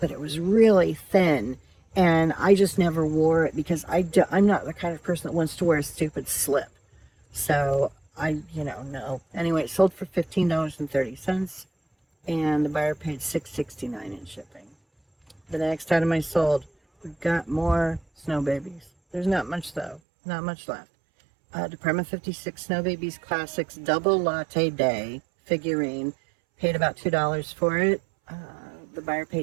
it was really thin, and I just never wore it because I'm not the kind of person that wants to wear a stupid slip. So no. Anyway, it sold for $15.30, and the buyer paid $6.69 in shipping. The next item I sold, we got more snow babies. There's not much though, not much left. Department 56 Snow Babies Classics Double Latte Day figurine. Paid about $2 for it. The buyer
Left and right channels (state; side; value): drops out; left; at 20.0 s